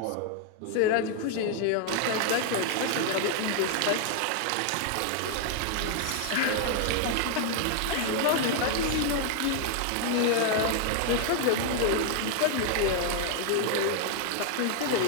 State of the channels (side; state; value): both; different; correlation 0.00